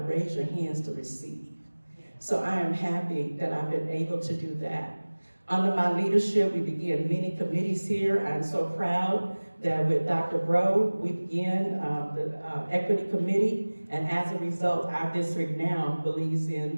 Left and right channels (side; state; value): both; inverted; correlation -1.00